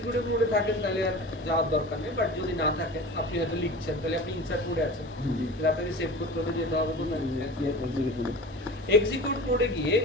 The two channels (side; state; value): both; normal; correlation 0.35